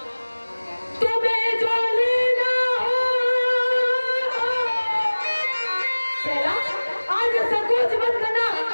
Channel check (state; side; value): inverted; both; correlation -1.00